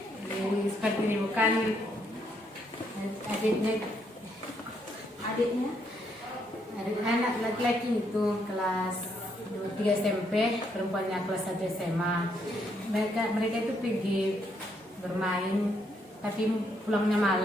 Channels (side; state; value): both; normal; correlation 0.74